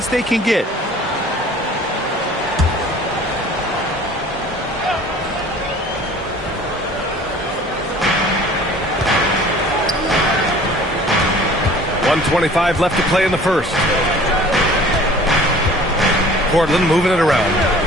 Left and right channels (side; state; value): both; normal; correlation 0.48